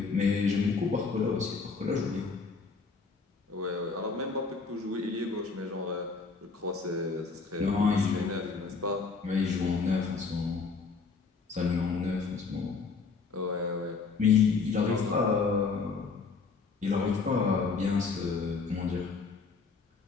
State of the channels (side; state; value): right; quieter; 4.7 dB